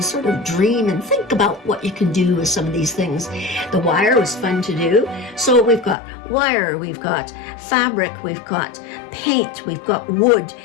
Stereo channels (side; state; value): right; drops out; at 6.0 s